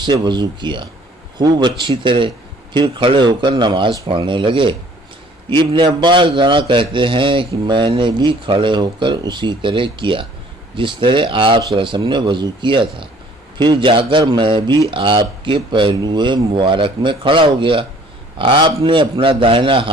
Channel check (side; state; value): both; normal; correlation 0.56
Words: سے وضو کیا خوب اچھی طرح، پھر کھڑے ہو کر نماز پڑھنے لگے۔ ابن عباس ذرا کہتے ہیں کہ میں نے بھی کھڑے ہو کر اسی طرح کیا جس طرح آپ صلی اللہ علیہ وسلم نے وضو کیا تھا، پھر جا کر میں بھی آپ کے پہلو مبارک میں کھڑا ہو گیا۔ آپ نے اپنا دائنا